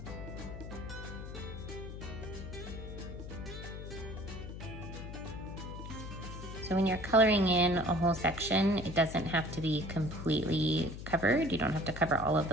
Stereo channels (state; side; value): noise; left; hum, 9 dB below the sound